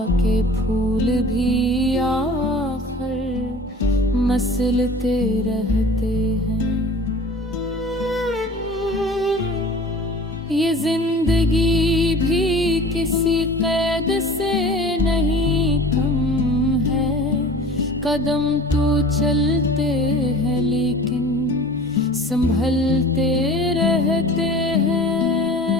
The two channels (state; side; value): normal; both; correlation 0.43